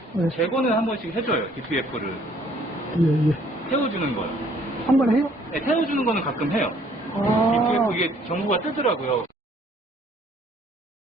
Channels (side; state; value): both; normal; correlation 0.61